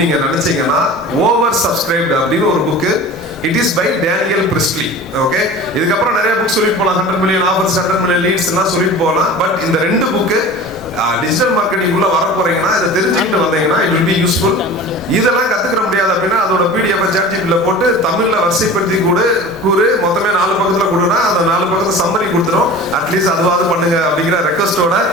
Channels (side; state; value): both; normal; correlation 0.38